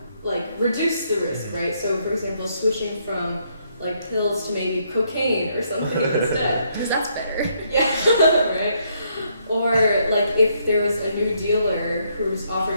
like, reduce the risk, right? So, for example, switching from, like, pills to maybe cocaine or something instead. Because that's better. Yeah, right? Or, like, if there was a new dealer who was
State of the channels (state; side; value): inverted; both; correlation -0.73